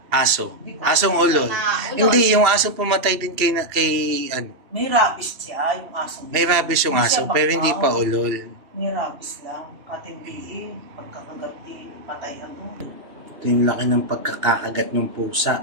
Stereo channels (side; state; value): left; late; 2.8 ms